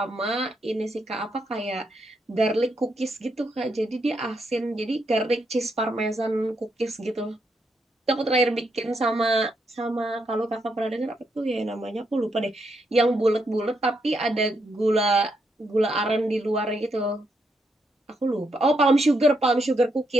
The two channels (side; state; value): both; normal; correlation 0.79